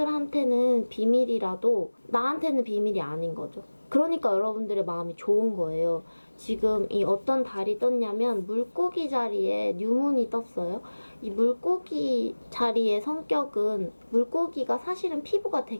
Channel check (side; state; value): both; inverted; correlation -1.00